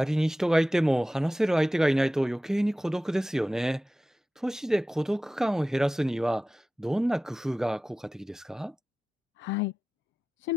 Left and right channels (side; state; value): both; normal; correlation 0.95